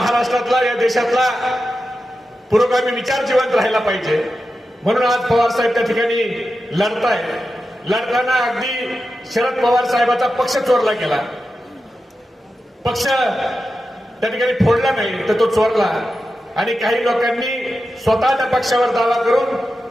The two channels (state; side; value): normal; both; correlation 0.91